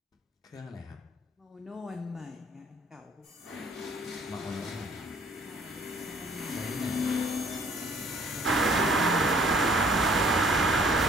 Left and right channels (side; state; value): both; normal; correlation 0.57